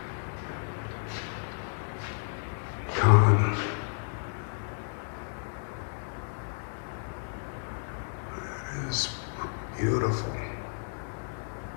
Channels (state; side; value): silent; right; digital silence